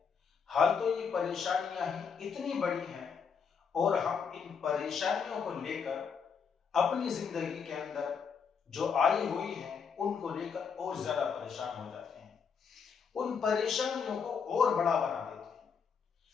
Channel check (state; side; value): quieter; right; 6.3 dB